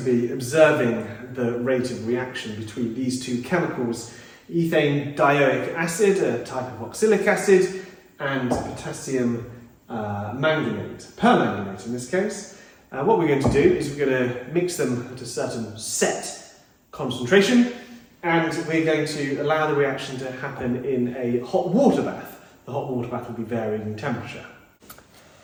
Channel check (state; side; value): identical; both; correlation 1.00